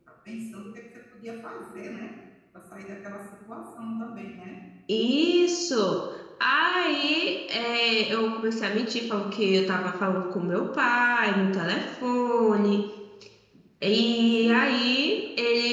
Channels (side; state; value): both; identical; correlation 1.00